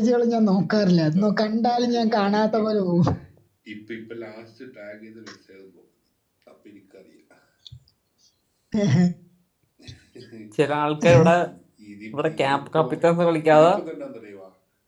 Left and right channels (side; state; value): both; identical; correlation 1.00